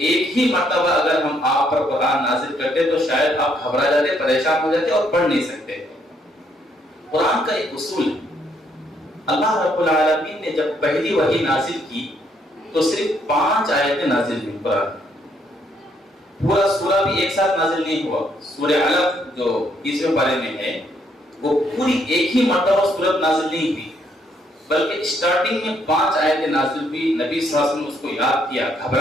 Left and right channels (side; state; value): both; normal; correlation 0.71